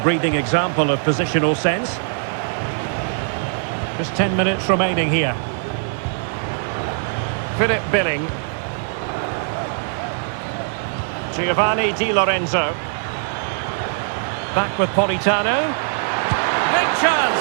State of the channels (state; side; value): silent; left; digital silence